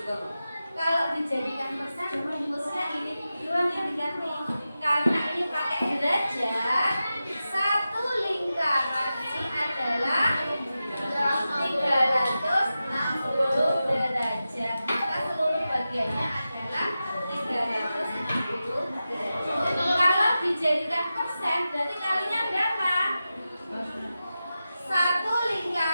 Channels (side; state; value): both; inverted; correlation -0.92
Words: juga Bu. Kalau dijadikan persen, rumusnya ini doang yang diganti. Karena ini pakai derajat, satu lingkaran ini adalah 360 derajat. Maka seluruh bagiannya adalah 360 derajat. Kalau dijadikan persen, berarti kalinya berapa? Satu